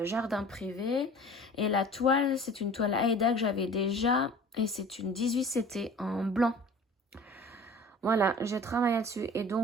Jardin Privé. Et la toile, c'est une toile Aida que j'avais déjà. Et c'est une 18 CT en blanc. Voilà, j'ai travaillé dessus. Et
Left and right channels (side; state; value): both; normal; correlation 0.43